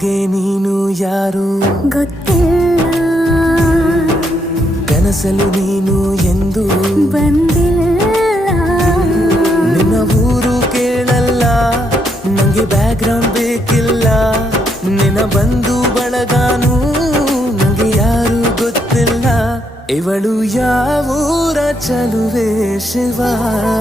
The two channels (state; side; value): normal; both; correlation 0.76